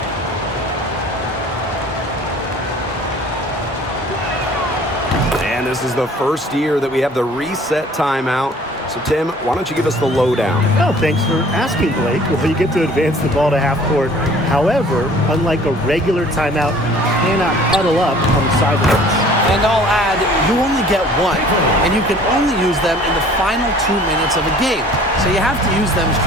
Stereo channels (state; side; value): normal; both; correlation 0.51